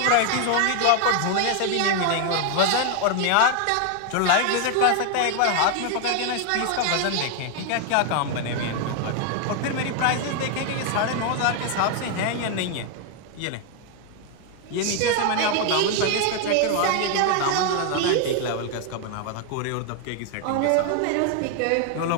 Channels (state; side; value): different; both; correlation 0.00